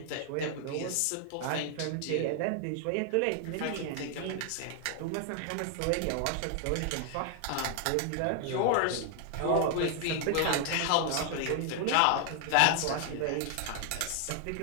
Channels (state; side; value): different; both; correlation 0.00